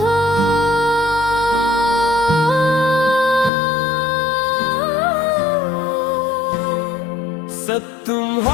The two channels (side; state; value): right; drops out; at 3.5 s